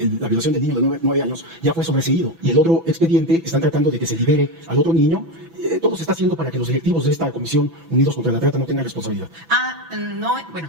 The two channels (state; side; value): late; left; 6.0 ms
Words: la violación del niño de 9 años, ya fue sobreseído. Y el otro expediente están tratando de que se libere al otro niño. Todo se está haciendo para que los directivos de esta comisión Unidos contra la Trata no tengan responsabilidad. No,